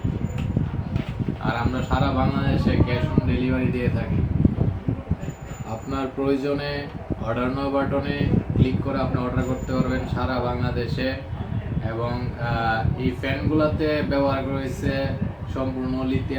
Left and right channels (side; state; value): both; identical; correlation 1.00